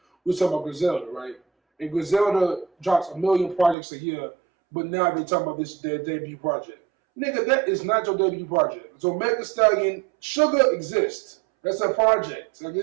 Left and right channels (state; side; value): drops out; left; at 3.8 s